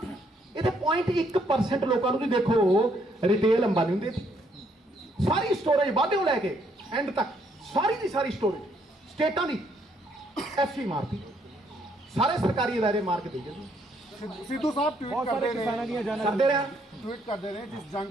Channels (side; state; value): both; normal; correlation 0.70